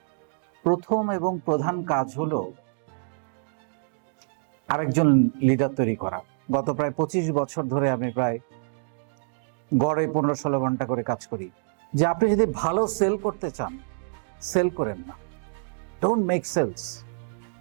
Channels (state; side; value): silent; left; digital silence